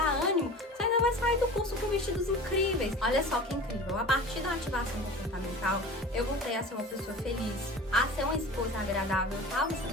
ânimo, você ainda vai sair do curso com vestidos incríveis. Olha só que incrível, a partir da ativação comportamental, eu voltei a ser uma pessoa feliz, a ser uma esposa agradável. Eu estava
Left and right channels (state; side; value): normal; both; correlation 0.37